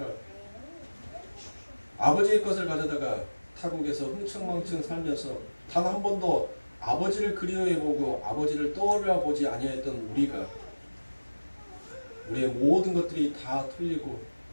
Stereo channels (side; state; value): both; inverted; correlation -1.00